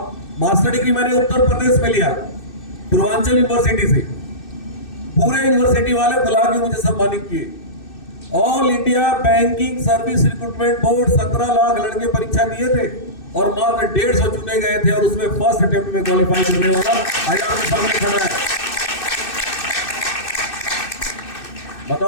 मास्टर डिग्री मैंने उत्तर प्रदेश में लिया, पूर्वांचल यूनिवर्सिटी से। पूरे यूनिवर्सिटी वाले बुला के मुझे सम्मानित किए। All India banking service recruitment board 17 lakh लड़के परीक्षा दिए थे और मात्र 150 चुने गए थे, और उसमें फर्स्ट अटेम्प्ट में क्वालिफाई करने वाला आज आपके सामने खड़ा है।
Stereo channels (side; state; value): right; late; 2.6 ms